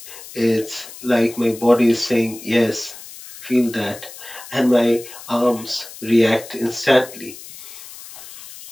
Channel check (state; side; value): noise; left; hiss, 16 dB below the sound